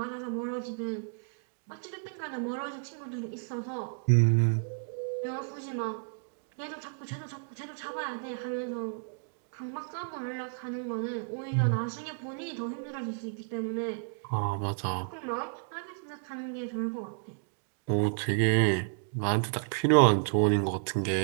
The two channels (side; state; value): left; silent; digital silence